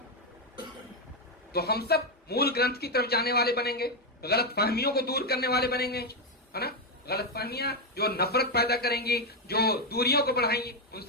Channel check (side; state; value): both; normal; correlation 0.05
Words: तो हम सब मूल ग्रंथ की तरफ जाने वाले बनेंगे, गलत फहमियों को दूर करने वाले बनेंगे, है ना। गलत फहमियां जो नफरत पैदा करेंगी, जो दूरियों को बढ़ाएंगी, उन